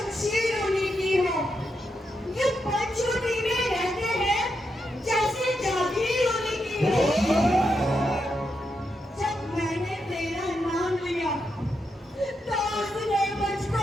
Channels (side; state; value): both; normal; correlation 0.84